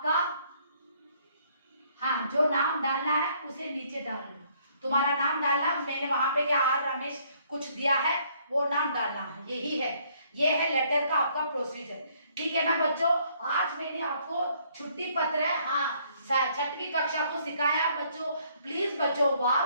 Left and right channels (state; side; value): inverted; both; correlation -0.65